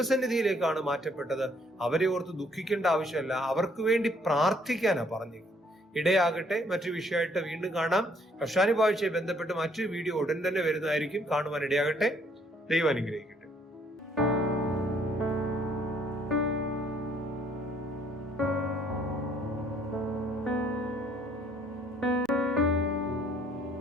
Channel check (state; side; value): normal; both; correlation 0.65